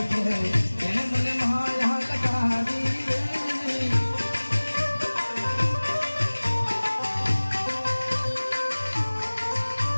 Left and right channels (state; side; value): inverted; both; correlation -1.00